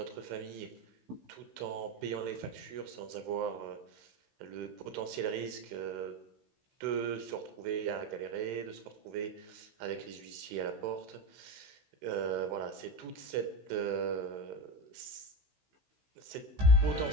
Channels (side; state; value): left; late; 16 ms